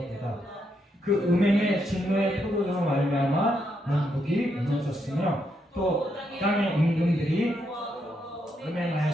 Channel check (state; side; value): normal; both; correlation 0.79